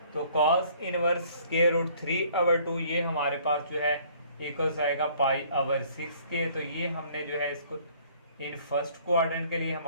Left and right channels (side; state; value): both; inverted; correlation -0.58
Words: तो cos inverse square root 3 over 2 ये हमारे पास जो है इक्वल्स आएगा पाई ओवर 6 के। तो ये हमने जो है इसको इन फर्स्ट क्वाड्रेंट के लिए